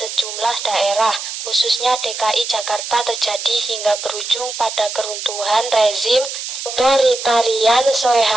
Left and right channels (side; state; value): right; noise; hiss, 7 dB below the sound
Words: daerah, khususnya DKI Jakarta terjadi hingga berujung pada keruntuhan rezim otoritarian